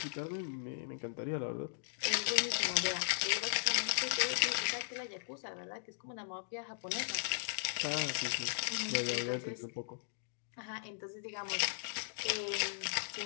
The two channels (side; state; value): right; silent; digital silence